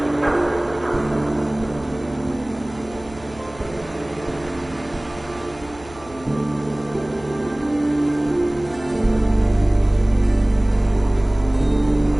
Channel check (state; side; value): noise; right; hum, 22 dB below the sound